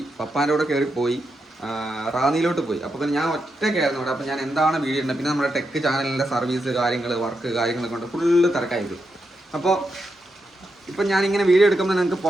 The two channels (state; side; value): normal; both; correlation 0.85